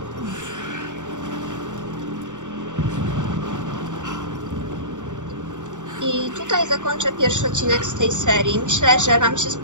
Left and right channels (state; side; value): late; left; 0.86 ms